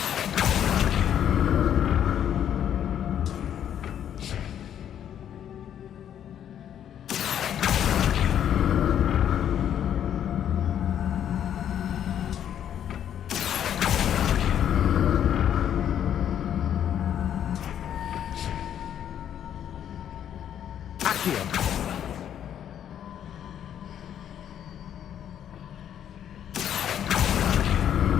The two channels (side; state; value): right; quieter; 9.8 dB